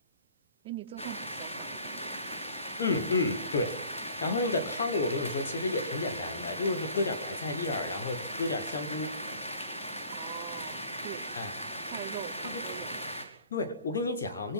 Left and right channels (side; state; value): both; inverted; correlation -0.51